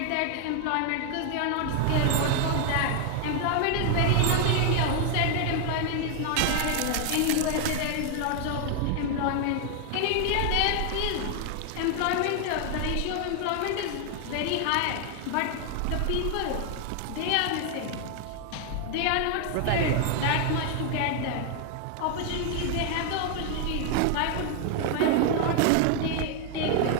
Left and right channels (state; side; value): different; both; correlation 0.00